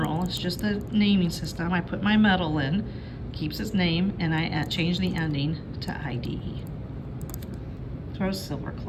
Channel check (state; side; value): identical; both; correlation 1.00